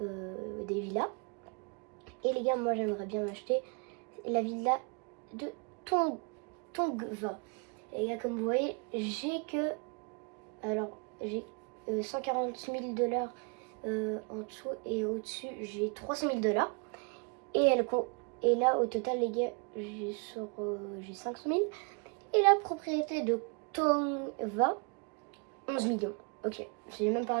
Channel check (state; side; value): quieter; left; 34.6 dB